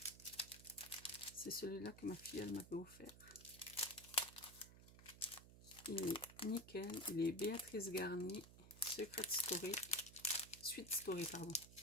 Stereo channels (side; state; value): right; noise; hum, 17 dB below the sound